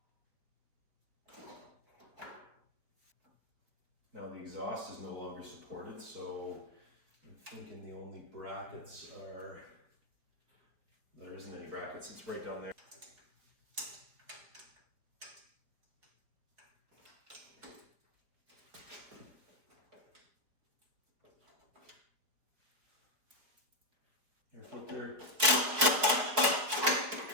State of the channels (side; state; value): left; late; 4.4 ms